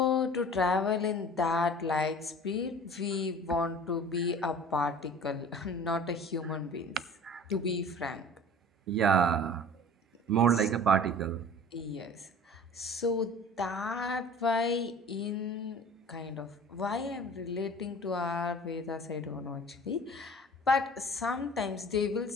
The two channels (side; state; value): both; normal; correlation 0.43